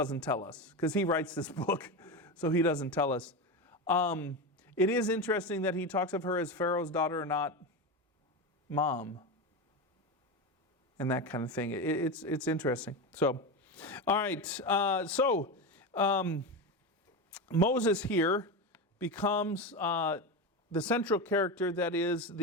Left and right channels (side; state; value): both; normal; correlation 0.18